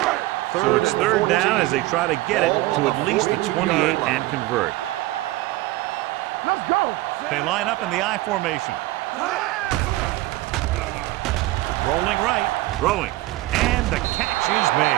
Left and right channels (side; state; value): left; quieter; 18.4 dB